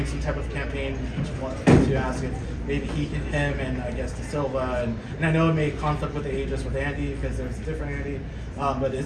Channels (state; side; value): identical; both; correlation 1.00